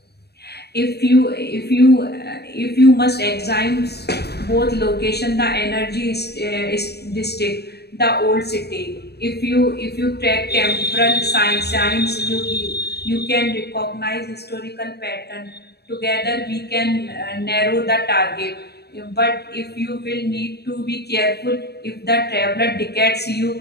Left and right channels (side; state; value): right; late; 0.47 ms